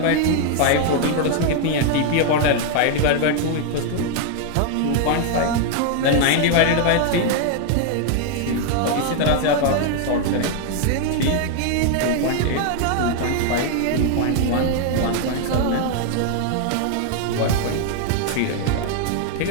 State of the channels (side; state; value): both; different; correlation 0.00